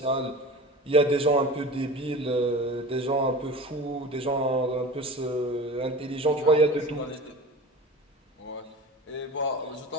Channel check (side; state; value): both; normal; correlation 0.35